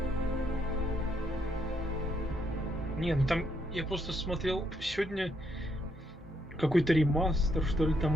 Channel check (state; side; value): normal; both; correlation 0.75